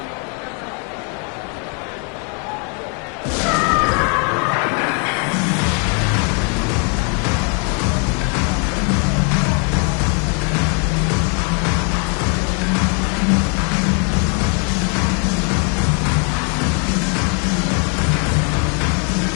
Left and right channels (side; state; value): right; quieter; 39.0 dB